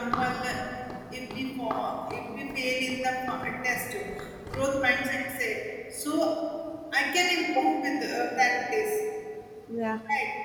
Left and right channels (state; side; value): identical; both; correlation 1.00